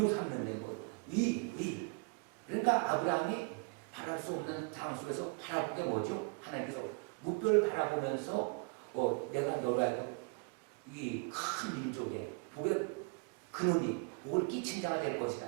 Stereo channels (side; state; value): left; quieter; 32.0 dB